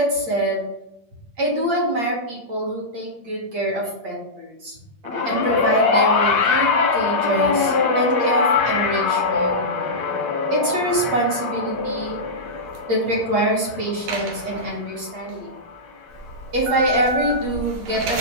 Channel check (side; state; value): left; late; 8.6 ms